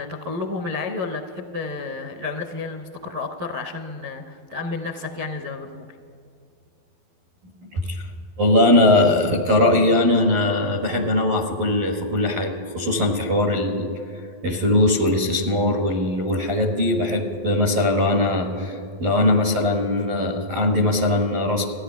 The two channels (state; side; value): late; left; 12 ms